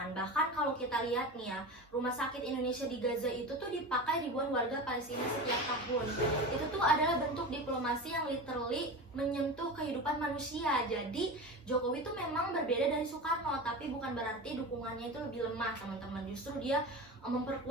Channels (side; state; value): both; normal; correlation 0.27